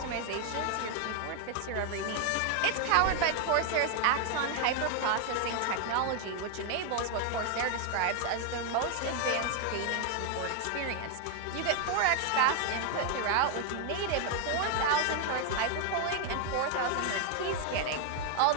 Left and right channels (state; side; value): different; both; correlation 0.00